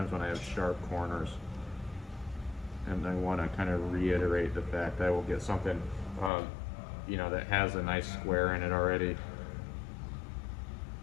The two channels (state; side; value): drops out; right; at 6.3 s